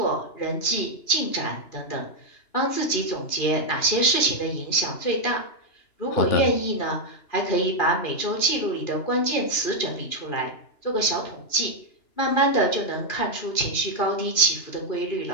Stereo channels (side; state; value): right; late; 2.9 ms